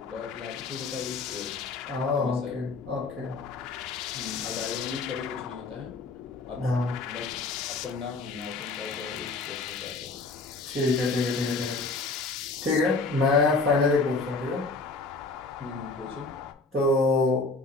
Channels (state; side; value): quieter; right; 3.7 dB